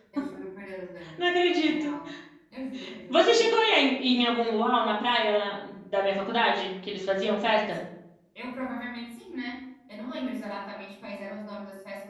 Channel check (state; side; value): identical; both; correlation 1.00